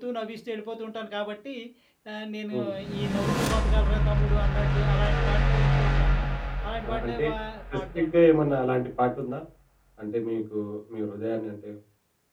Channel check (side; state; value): both; identical; correlation 1.00